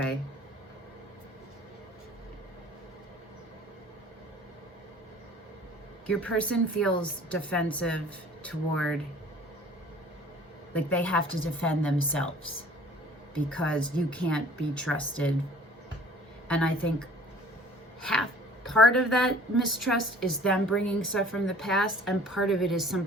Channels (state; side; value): normal; both; correlation 0.50